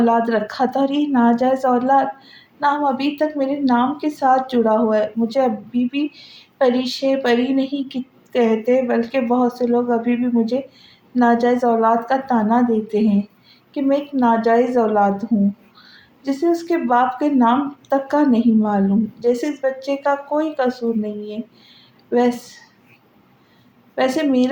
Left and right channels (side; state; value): both; identical; correlation 1.00